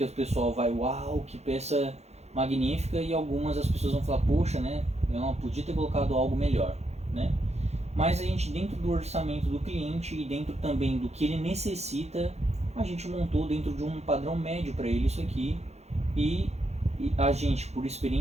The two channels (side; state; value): left; late; 0.31 ms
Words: o pessoal vai, uau, que peça magnífica, e algumas as pessoas vão falar, poxa, né? Eu não podia ter colocado algo melhor, né? Mas a gente, dentro do orçamento do cliente e dentro também do que ele necessita, a gente montou dentro de um padrão médio para ele isso aqui, e a gente, por